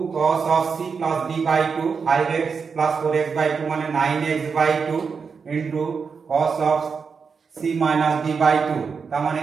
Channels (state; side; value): quieter; left; 5.6 dB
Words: cos of c plus d by 2, 5x plus 4x by 2 মানে 9x/2 into cos of c minus d by 2 তার মানে